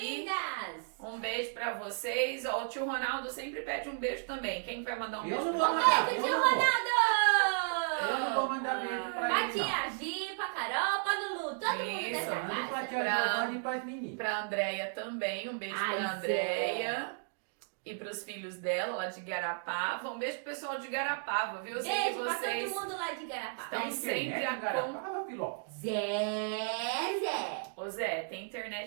lindas. Um beijo pra vocês. Ó, o tio Ronaldo sempre pede um beijo também. Quem vai mandar um Eu beijo não pra vou ele? mandar. Beijo, Eu tio não vou. Ronaldo! Eu não vou mandar beijo pra Pra ele, não. tia Gi, pra Carol, pra Lulu, todo mundo Isso, dessa Manda pra casa. tia Pra- Giovana e pras meninas. Pra Andréia também. Um beijo Ai, pra Zé. Andréia. E pros filhos dela, lá de Garapava. Um beijo pro pessoal de Garapava, viu? Eu sei que Beijo pra vocês todo mundo lá de Garapá. estão Tem sempre internet, a Garapava, Filó? Zé! Ô Zé, tem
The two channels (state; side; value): silent; left; digital silence